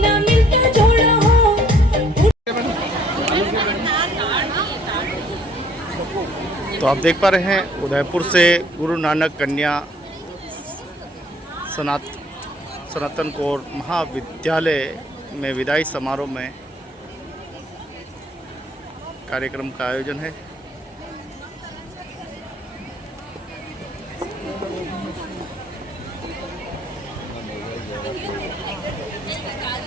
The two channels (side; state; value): both; normal; correlation 0.60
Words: तो आप देख पा रहे हैं उदयपुर से गुरु नानक कन्या सनातन कौर महाविद्यालय में विदाई समारोह में कार्यक्रम का आयोजन है।